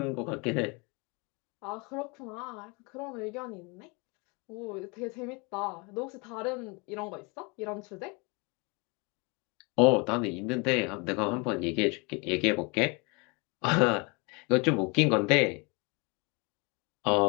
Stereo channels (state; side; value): quieter; right; 29.7 dB